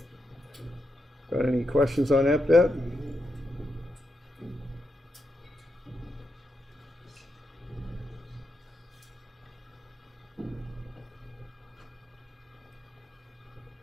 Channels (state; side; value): normal; both; correlation 0.84